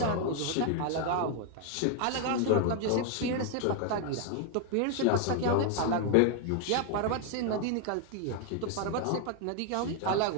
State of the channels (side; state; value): both; different; correlation 0.00